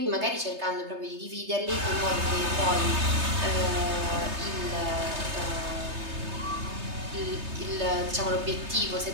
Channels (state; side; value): late; left; 3.3 ms